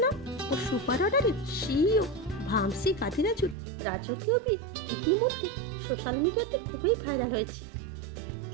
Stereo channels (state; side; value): drops out; left; at 3.6 s